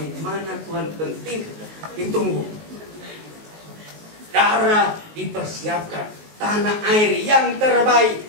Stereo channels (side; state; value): left; late; 19 ms